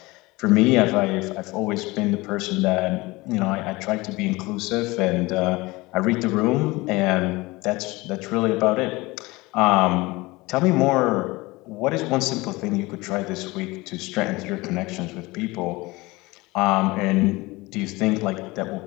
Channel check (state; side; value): quieter; right; 22.0 dB